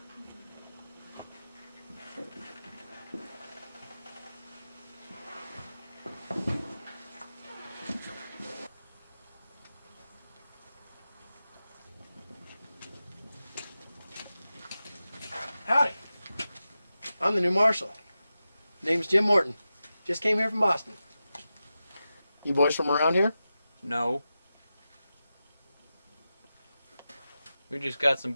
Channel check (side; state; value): both; inverted; correlation -0.92